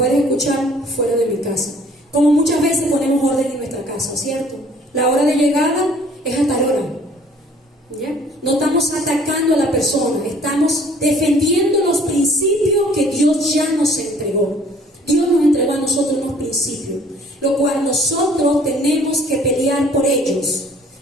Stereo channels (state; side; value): normal; both; correlation 0.55